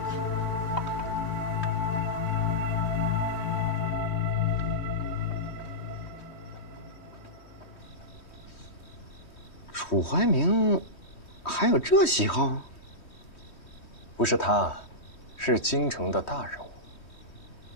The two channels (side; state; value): right; late; 3.1 ms